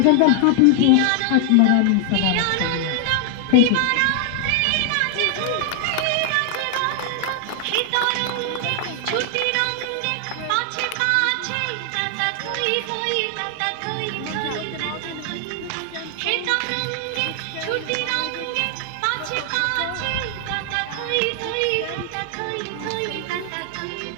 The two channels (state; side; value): different; both; correlation 0.00